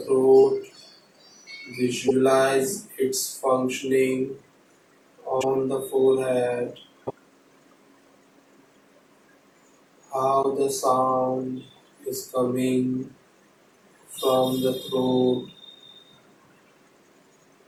throat. Visualize its functioning on the forehead. How the sound is coming from the throat.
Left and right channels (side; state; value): both; identical; correlation 1.00